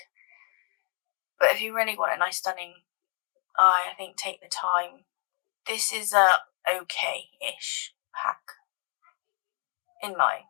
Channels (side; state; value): right; quieter; 38.1 dB